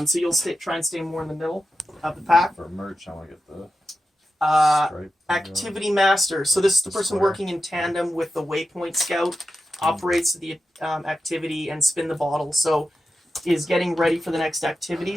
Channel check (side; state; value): both; normal; correlation 0.90